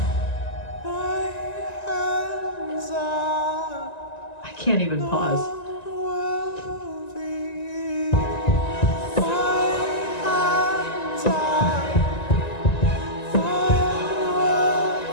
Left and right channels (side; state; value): right; late; 1.9 ms